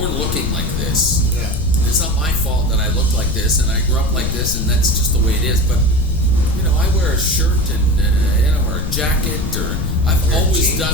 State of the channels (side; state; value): left; noise; rumble, 3 dB below the sound